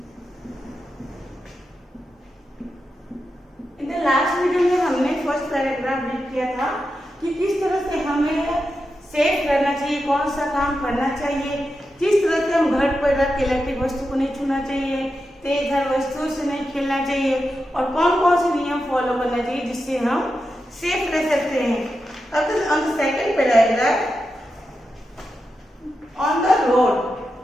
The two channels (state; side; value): normal; both; correlation 0.89